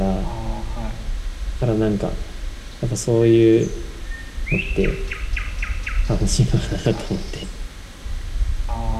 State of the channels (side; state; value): both; identical; correlation 1.00